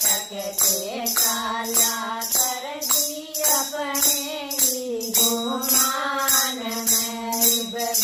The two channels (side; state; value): both; identical; correlation 1.00